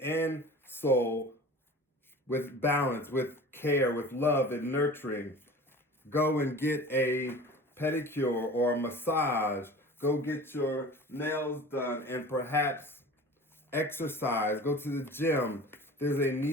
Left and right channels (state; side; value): normal; both; correlation 0.39